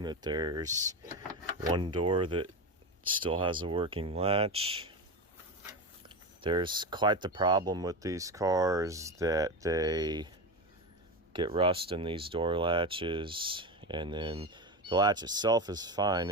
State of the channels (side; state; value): both; normal; correlation 0.20